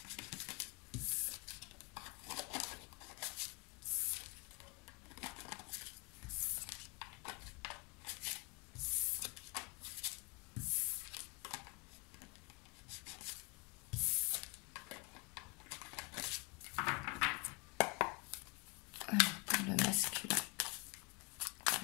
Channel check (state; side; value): quieter; right; 28.2 dB